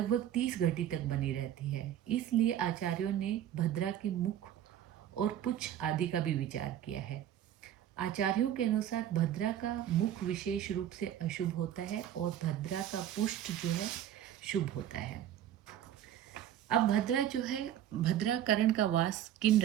30 घटी तक बनी रहती है, इसलिए आचार्यों ने भद्रा के मुख और पुच्छ आदि का भी विचार किया है। आचार्यों के अनुसार भद्रा का मुख विशेष रूप से अशुभ होता है और भद्रा का पुष्ट जो है शुभ होता है। अब भद्रा जो है, भद्रा करण का वास किन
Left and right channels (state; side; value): quieter; left; 11.1 dB